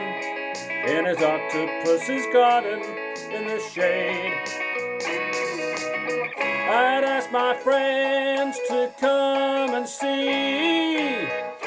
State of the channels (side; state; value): both; identical; correlation 1.00